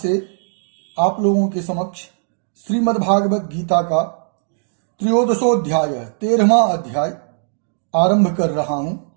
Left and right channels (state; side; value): silent; left; digital silence